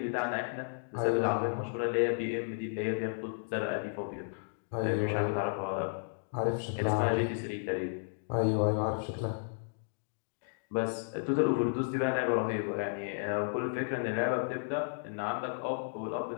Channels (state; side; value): silent; right; digital silence